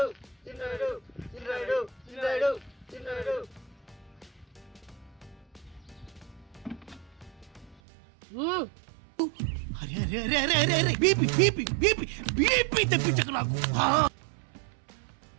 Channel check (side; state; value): left; drops out; at 7.8 s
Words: చిన్నరాయుడు చిన్నరాయుడు చిన్నరాయుడు చిన్నరాయుడు అరే అరే అరే అరే అరే అరే బీపీ బీపీ బీపీ బీపీ తెప్పించకు నాకు.